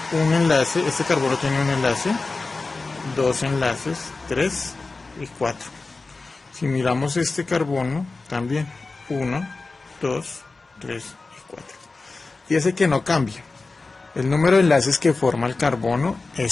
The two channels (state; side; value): quieter; right; 3.7 dB